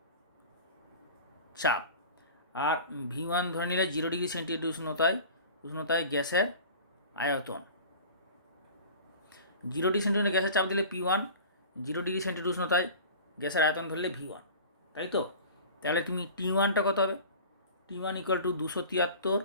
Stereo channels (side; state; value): both; inverted; correlation -0.39